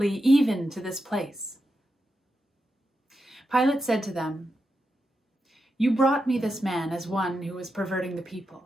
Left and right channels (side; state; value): both; normal; correlation 0.87